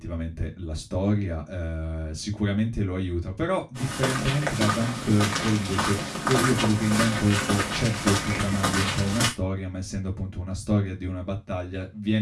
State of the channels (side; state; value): both; identical; correlation 1.00